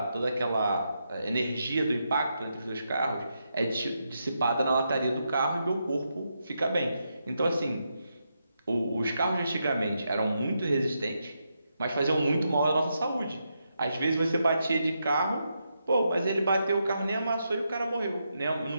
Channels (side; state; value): both; inverted; correlation -0.83